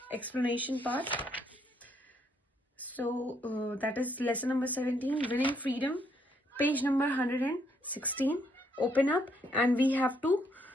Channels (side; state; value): both; normal; correlation 0.72